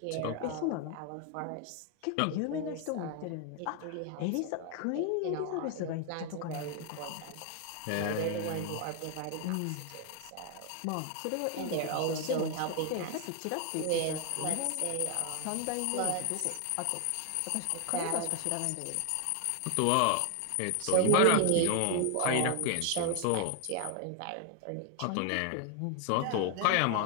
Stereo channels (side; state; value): both; different; correlation 0.01